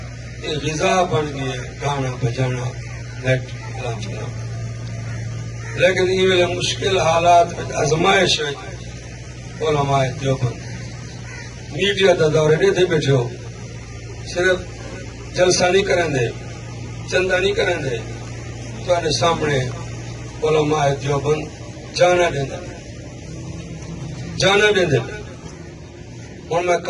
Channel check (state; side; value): identical; both; correlation 1.00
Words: یہ غذا بن گئی ہے گانا بجانا، نیٹ کلام چلانا، لیکن یہ ویلے مشکل حالات میں ازمائش ہے علماء دیوبند میڈیا دا دورے نہیں تھے بیٹھے ہو، صرف جلسہ نہیں کریں دے، چندہ نہیں کریں دے، تو سامنے علماء دیوبند جانا دیں دے، جانا دیں دے، اور میں